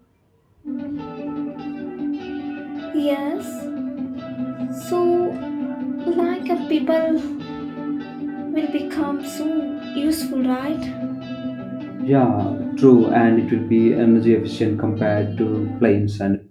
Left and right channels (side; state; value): both; identical; correlation 1.00